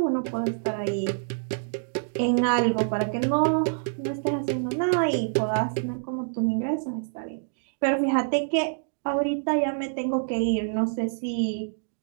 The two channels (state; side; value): silent; left; digital silence